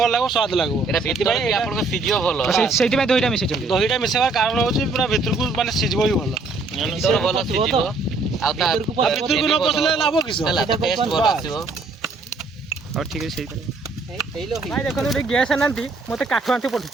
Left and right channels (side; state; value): left; quieter; 3.7 dB